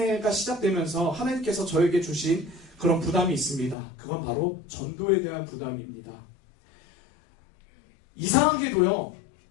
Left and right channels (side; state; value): right; drops out; at 3.8 s